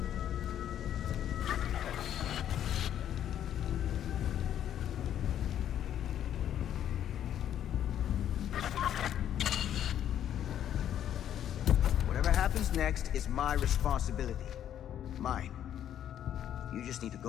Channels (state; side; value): quieter; right; 10.4 dB